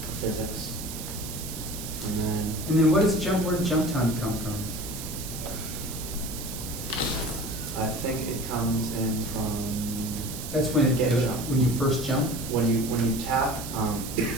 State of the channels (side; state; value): right; noise; hiss, 9 dB below the sound